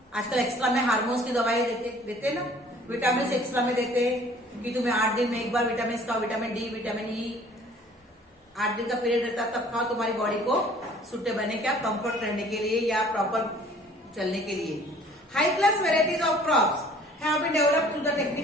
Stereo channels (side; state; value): both; normal; correlation 0.53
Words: आजकल एक्स्ट्रा में हार्मोन्स की दवाई देते ना, विटामिन एक्स्ट्रा में देते हैं कि तुम्हें 8 दिन में एक बार विटामिन खाओ, विटामिन डी, विटामिन ई, 8 दिन का पीरियड रहता है तब खाओ, तुम्हारी बॉडी को सुटेबल बने, क्या कंफर्ट रहने के लिए या प्रॉपर चलने के लिए। High class varieties of crops have been developed through the